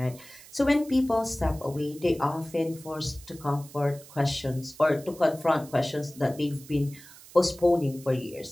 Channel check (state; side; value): noise; right; hiss, 20 dB below the sound